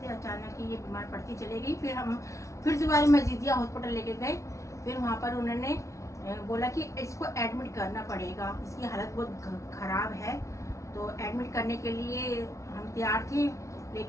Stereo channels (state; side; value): late; right; 0.14 ms